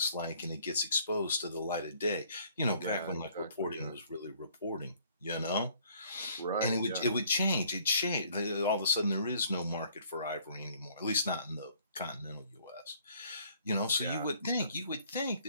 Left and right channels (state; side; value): inverted; both; correlation -0.60